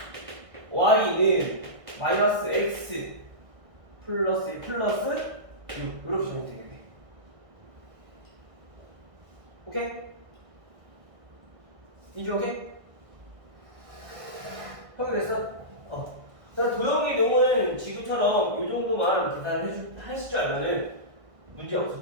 y는 마이너스 x 플러스 1 플러스 6 이렇게 정리되겠네. 오케이? 이제 오케이? 확인됐어? 도형의 경우는 지금처럼 이 정도만 계산을 하실 줄 알면은 문제 없을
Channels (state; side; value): late; left; 1.6 ms